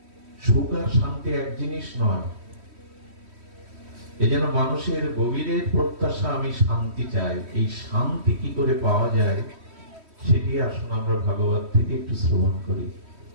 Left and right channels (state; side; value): late; left; 3.1 ms